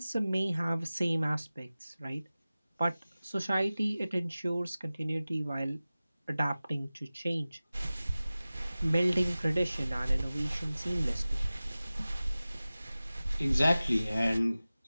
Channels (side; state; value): both; inverted; correlation -0.97